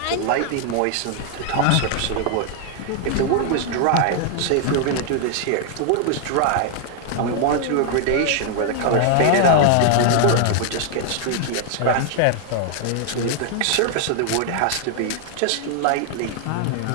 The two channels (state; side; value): different; both; correlation 0.00